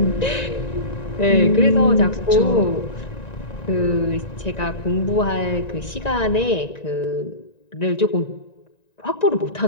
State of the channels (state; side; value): late; right; 1.9 ms